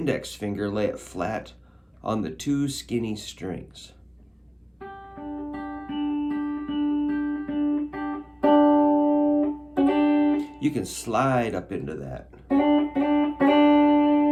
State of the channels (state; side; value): identical; both; correlation 1.00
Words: finger, lay it flat on the two skinny strings. You can slide up into that.